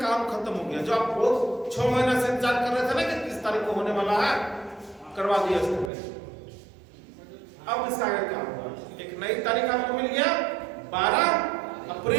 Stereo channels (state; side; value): drops out; left; at 5.9 s